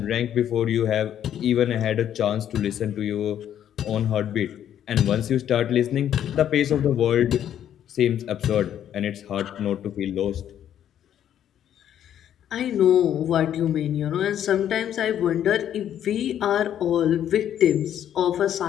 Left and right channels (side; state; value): right; quieter; 10.3 dB